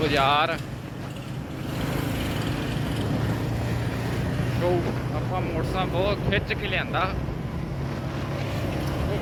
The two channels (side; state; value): both; identical; correlation 1.00